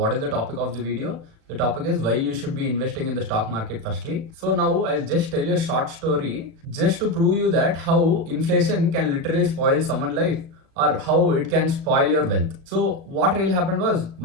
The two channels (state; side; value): late; left; 37 ms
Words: is the topic of the video? The topic is why you should be investing in the stock market firstly. So now I'll just tell you a short story just to prove you that how inflation can literally spoil someone's life or how it can spoil your wealth. So what really happened was